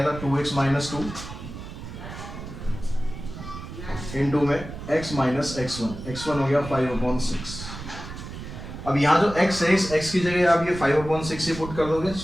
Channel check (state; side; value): noise; right; rumble, 11 dB below the sound